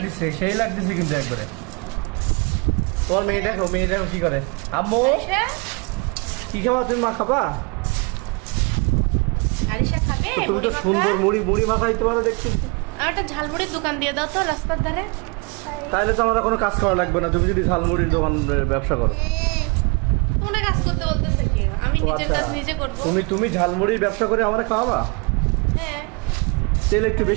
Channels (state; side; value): quieter; left; 30.4 dB